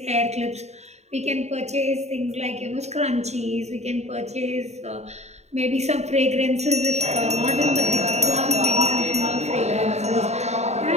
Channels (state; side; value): late; left; 0.32 ms